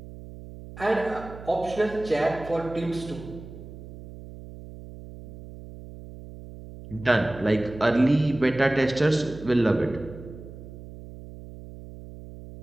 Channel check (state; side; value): noise; right; hum, 15 dB below the sound